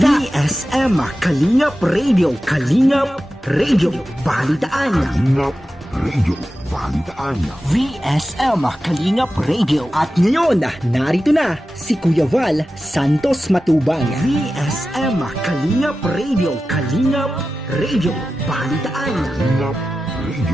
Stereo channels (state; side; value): normal; both; correlation 0.93